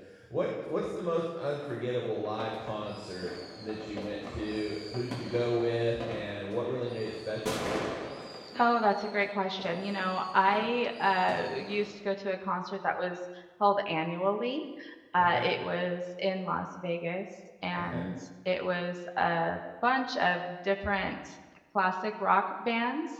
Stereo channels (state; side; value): identical; both; correlation 1.00